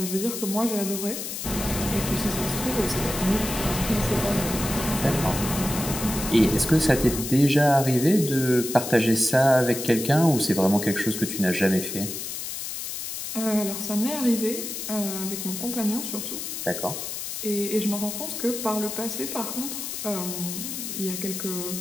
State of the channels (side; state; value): left; noise; hiss, 6 dB below the sound